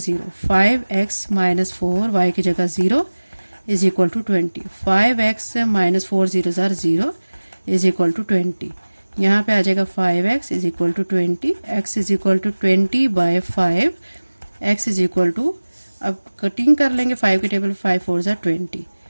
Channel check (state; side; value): inverted; both; correlation -1.00